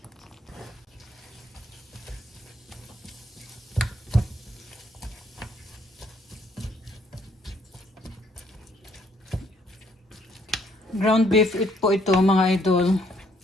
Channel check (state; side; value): normal; both; correlation 0.67